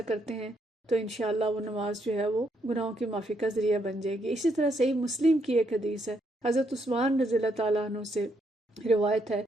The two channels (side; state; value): both; normal; correlation 0.75